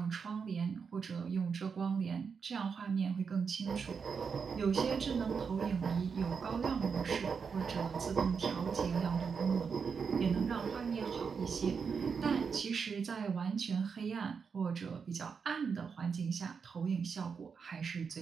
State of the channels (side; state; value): left; quieter; 5.9 dB